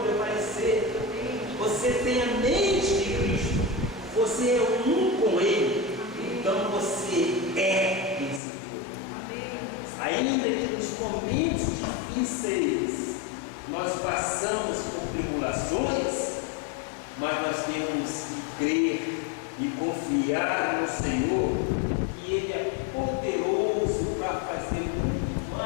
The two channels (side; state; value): right; drops out; at 8.4 s